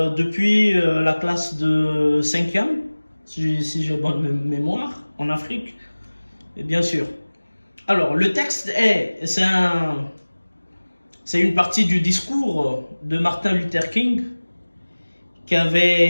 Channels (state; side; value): inverted; both; correlation -1.00